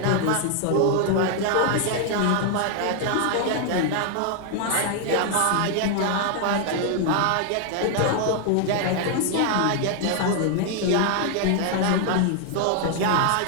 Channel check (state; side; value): different; both; correlation 0.00